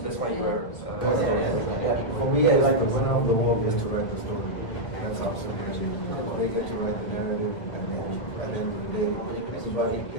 you are. For me, it's like the winner of the war is to write the story. That's how simple it is. They get to write the narrative, and then at the end of the day,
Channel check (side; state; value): right; late; 2.0 ms